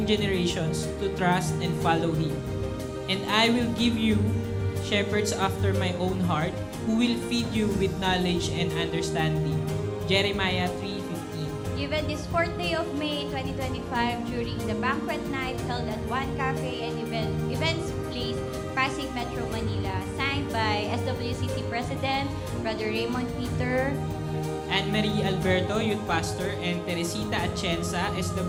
generations to trust and follow Him. And I will give you shepherds after my own heart, who will feed you with knowledge and understanding. Jeremiah 3:15. Given this 4th day of May 2025 during the banquet night held at One Cafe and Events Place, Pasig Metro, Manila, signed by SWCC President, Brother Raymond Peter, Anne-Marie Alberto, Youth Pastor, and Teresita Atienza,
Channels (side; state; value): both; identical; correlation 1.00